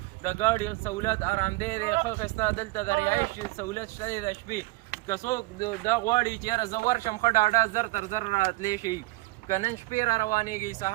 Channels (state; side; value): quieter; left; 21.9 dB